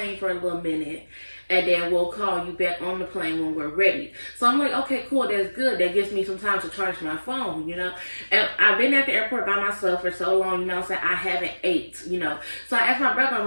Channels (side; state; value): both; inverted; correlation -1.00